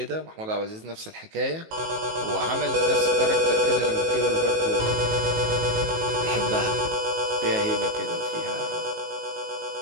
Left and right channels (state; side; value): late; left; 19 ms